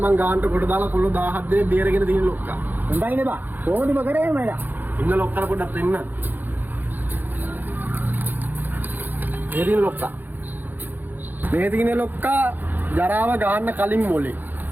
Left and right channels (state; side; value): late; left; 0.087 ms